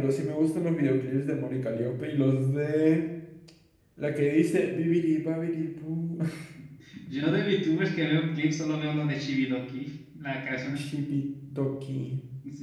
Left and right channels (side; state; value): both; identical; correlation 1.00